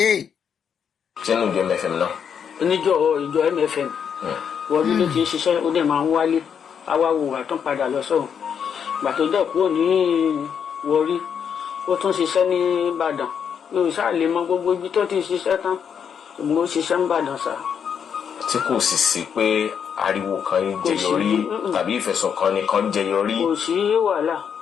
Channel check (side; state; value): right; quieter; 7.5 dB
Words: Chenu jo MFM now. Ìjọ MFM. Wọ́n ló ti ṣiṣẹ́ ó dẹ̀ máa ń wálé. Àwa wò wá tán padà lọ sọ́hùn. Gbà tó jẹ́ kúrò ní Warri, ó tún ṣiṣẹ́ ní Ìbàdàn. Yóò ṣáà lè mọ gbogbo ibi tó ti ṣiṣẹ́ tán. Ṣùgbọ́n ó ṣiṣẹ́ ní Ìbàdàn sá. Tí kò sì sí pé ariwo kan jẹyọrí tàbí ìfẹ̀sùnkàn nìkan jẹyọrí. Kò sí wàhálà.